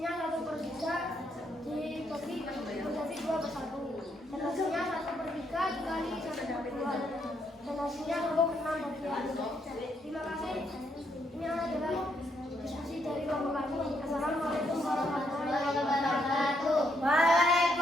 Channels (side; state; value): both; normal; correlation 0.75